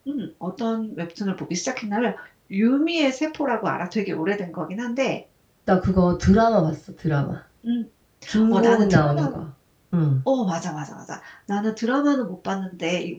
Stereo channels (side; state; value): both; identical; correlation 1.00